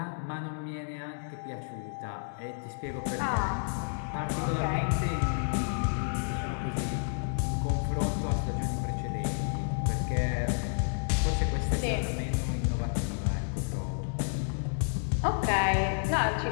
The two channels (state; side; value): silent; right; digital silence